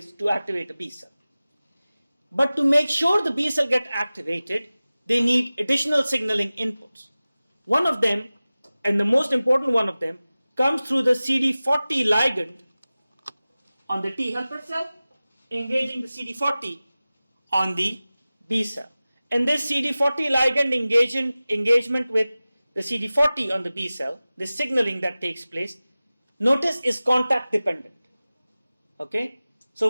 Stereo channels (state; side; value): inverted; both; correlation -0.97